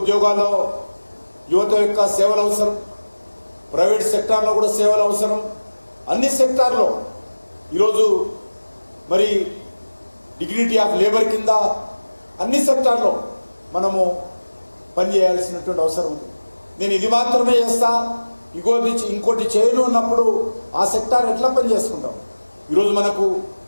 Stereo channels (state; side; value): inverted; both; correlation -1.00